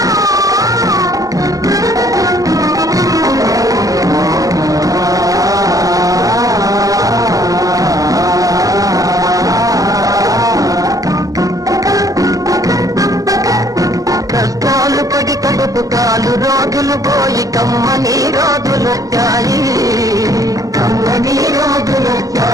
కాలు రోజులు పోయి కమ్మని రోజులొచ్చాయి. కమ్మని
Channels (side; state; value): left; late; 0.17 ms